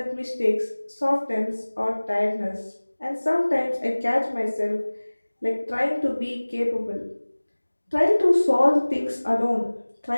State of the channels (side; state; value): both; inverted; correlation -1.00